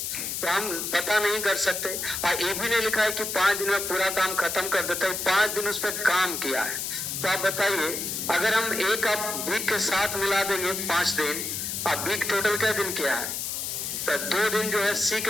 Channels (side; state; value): left; noise; hiss, 3 dB below the sound